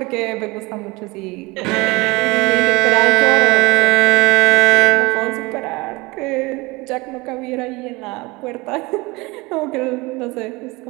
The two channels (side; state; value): left; quieter; 23.8 dB